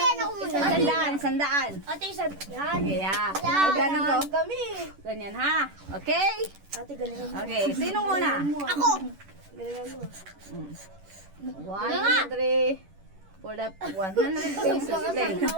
yan ako muna. Sandaan. ate, yan. Okay, ha. Yan. Ganun ko. Kami. Ganyan, ha? Okay? Ate, galingan mo. Okay, sino muna? Ako. Galingan mo. 1, 2, 3, for the 100 pesos. Play.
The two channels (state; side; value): late; left; 10 ms